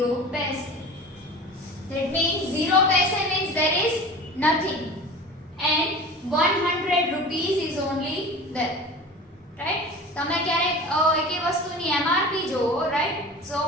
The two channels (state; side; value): normal; both; correlation 0.37